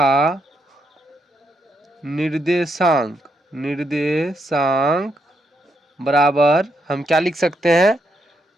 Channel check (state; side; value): normal; both; correlation 0.79